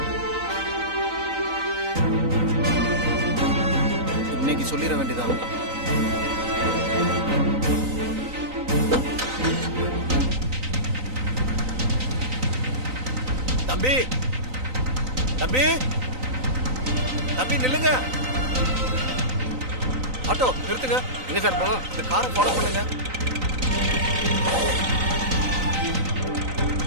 இன்னைக்கு சொல்லிட வேண்டியதான். தம்பி தம்பி தம்பி நில்லுங்க. ஆட்டோ நிறுத்துங்க. எங்க சார் போனோம்? இந்த காரை ஃபாலோ பண்ணுங்க.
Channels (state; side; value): late; left; 3.9 ms